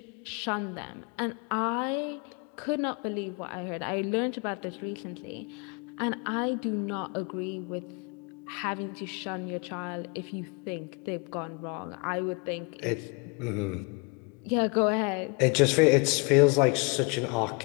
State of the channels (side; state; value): right; quieter; 31.9 dB